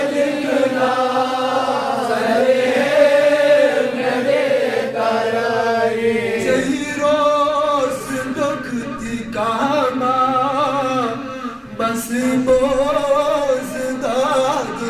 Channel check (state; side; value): identical; both; correlation 1.00